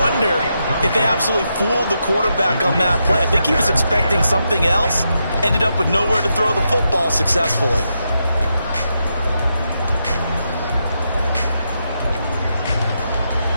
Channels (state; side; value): inverted; both; correlation -0.84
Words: if they absolutely fooled the quarterback on that play. I think he was expecting something else. Ended up with nowhere to throw the football successfully.